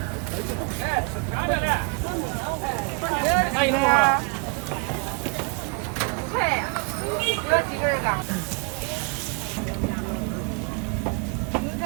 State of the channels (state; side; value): quieter; left; 33.7 dB